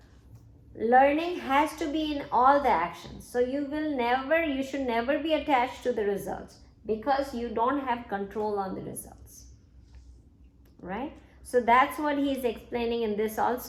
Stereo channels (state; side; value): identical; both; correlation 1.00